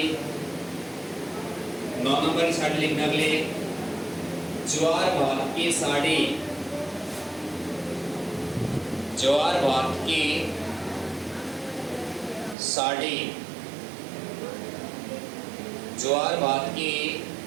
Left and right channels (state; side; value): drops out; left; at 12.6 s